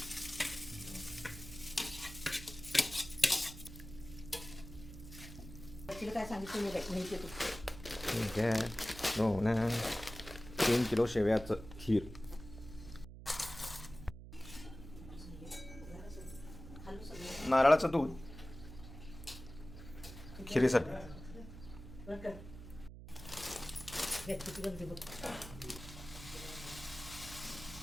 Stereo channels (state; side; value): noise; right; hum, 14 dB below the sound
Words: काय सांगितलं माहिती तू ठीक आहे. हो ना, 3 किलो शेवयाचं खीर. नारळाचं दूध खिरीसाठी.